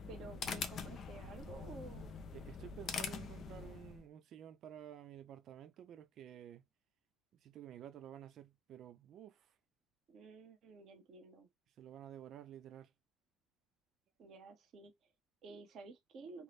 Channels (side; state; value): both; normal; correlation 0.60